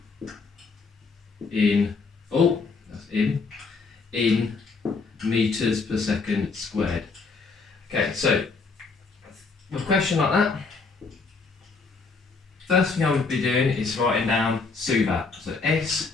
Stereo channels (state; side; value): quieter; right; 4.4 dB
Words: in meters per second squared? Okay, so with a question like that, first thing I would be doing is writing down SUVAT. So